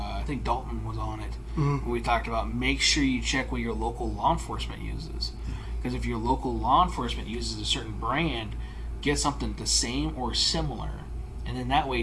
think Dalton was on it. Mm-hmm. We talked about make sure you check what your local law enforcement uses. Because if your local law enforcement uses a certain brand, get something the same or similar. And then that way,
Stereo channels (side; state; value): both; identical; correlation 1.00